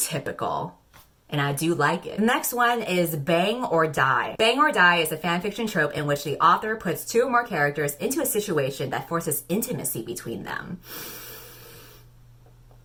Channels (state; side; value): identical; both; correlation 1.00